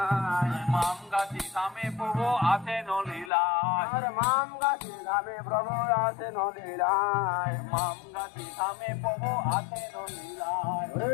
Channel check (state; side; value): drops out; right; at 3.3 s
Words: মাম গাছি গ্রামে প্রভু আছেন লীলায় আর মাম গাছে গ্রামে প্রভু আছেন লীলায় মাম গাছি গ্রামে প্রভু আছেন লীলায়